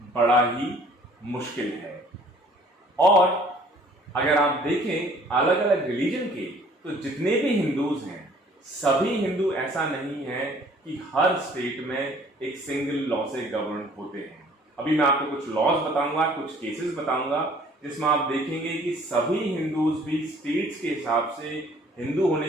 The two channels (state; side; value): normal; both; correlation 0.55